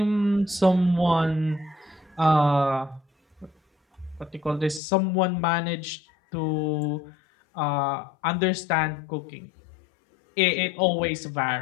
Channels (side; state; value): right; drops out; at 4.8 s